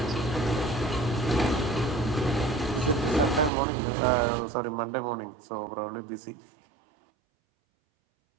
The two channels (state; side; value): drops out; left; at 3.5 s